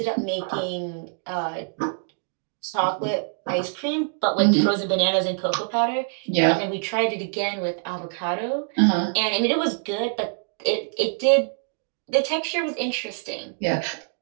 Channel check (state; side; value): silent; left; 62 dB below the other